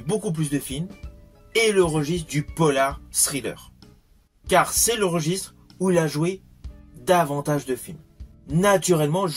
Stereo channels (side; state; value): both; identical; correlation 1.00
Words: beaucoup plus de films est le registre du polar thriller. Car c'est le registre où il a joué davantage de films. Naturellement,